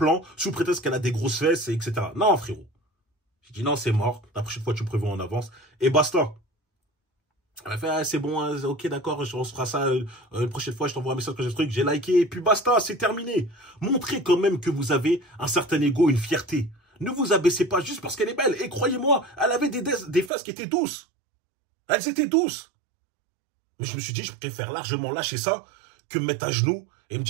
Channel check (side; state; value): left; drops out; at 20.3 s